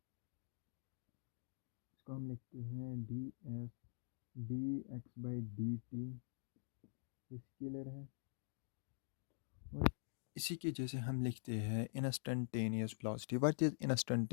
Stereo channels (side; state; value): right; silent; digital silence